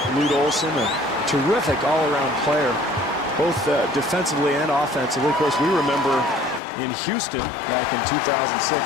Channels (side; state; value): right; drops out; at 6.6 s